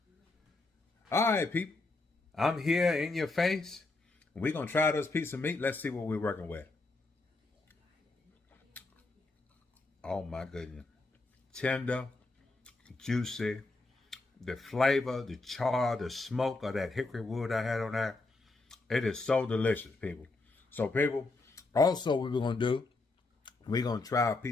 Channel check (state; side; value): quieter; right; 3.3 dB